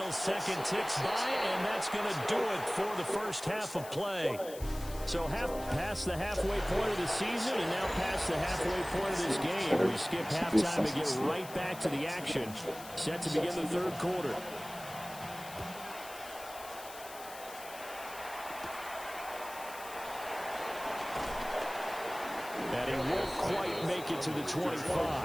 second ticks by, and that's going to do it for the first half of play. So past the halfway point of the season and now past the halfway point of this game. We skip halftime to get right back to the action. Set to begin the 3rd quarter. And he won't quite make it to the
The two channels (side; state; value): left; noise; hiss, 15 dB below the sound